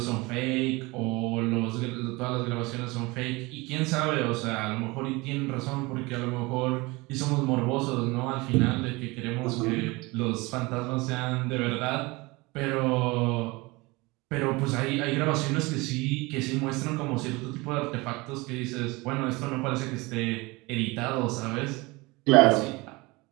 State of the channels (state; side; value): quieter; left; 23.7 dB